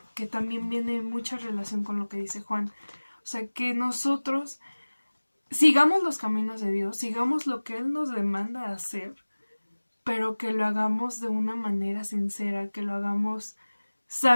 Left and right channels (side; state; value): both; inverted; correlation -1.00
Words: Que también viene en mucha relación con lo que dice Juan. O sea, que nosotros sigamos los caminos de Dios, sigamos lo que Él nos demanda hacer, pero que lo hagamos de una manera sincera, que lo hagamos